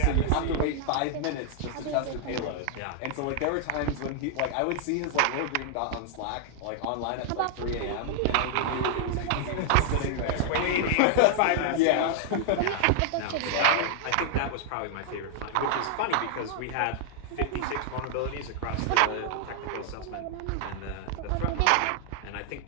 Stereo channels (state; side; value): different; both; correlation 0.00